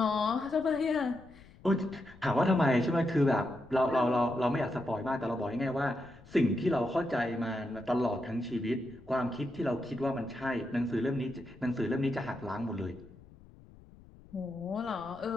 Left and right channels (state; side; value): noise; left; rumble, 22 dB below the sound